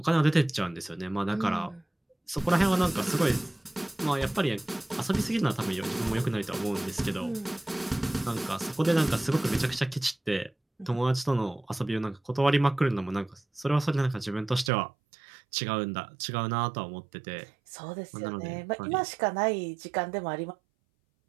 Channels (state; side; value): drops out; left; at 14.7 s